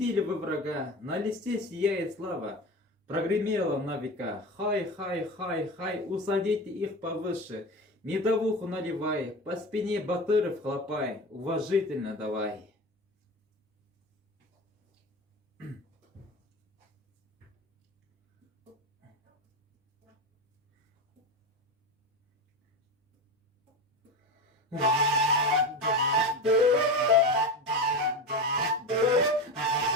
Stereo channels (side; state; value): both; normal; correlation 0.25